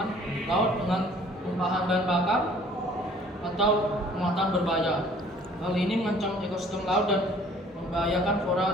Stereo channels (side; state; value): both; normal; correlation 0.54